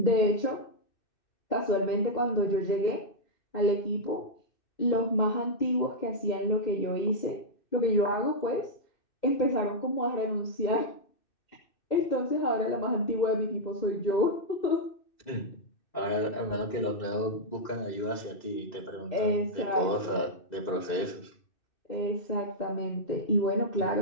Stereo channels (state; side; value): late; right; 2.6 ms